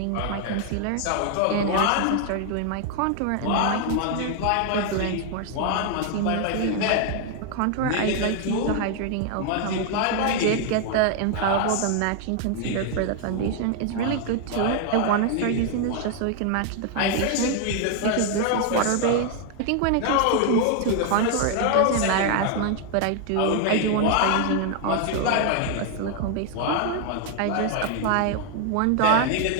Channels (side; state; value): both; different; correlation 0.00